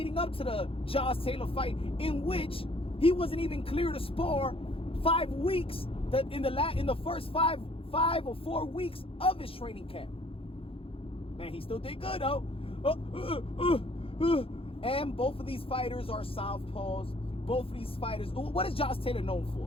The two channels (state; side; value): late; right; 0.27 ms